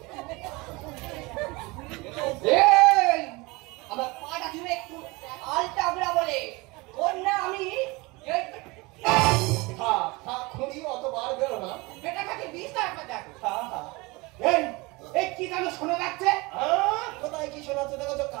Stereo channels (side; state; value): left; quieter; 24.5 dB